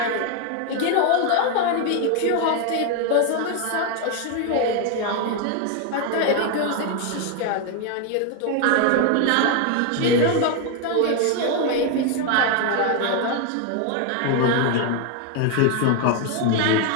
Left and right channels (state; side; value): different; both; correlation 0.01